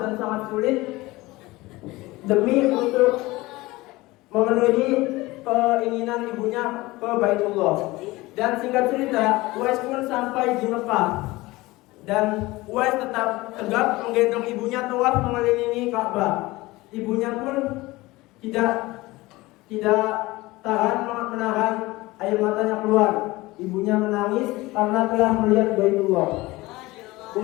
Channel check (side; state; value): right; quieter; 20.3 dB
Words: dan sangat sulit demi untuk memenuhi keinginan ibunya ke Baitullah. Dan singkat cerita, Uwais pun sampai di Mekah dan Uwais tetap tegap menggendong ibunya tawaf mengelilingi Ka'bah. Ibunya pun tidak tahan menahan air matanya keluar. Ibunya menangis karena telah melihat Baitullah.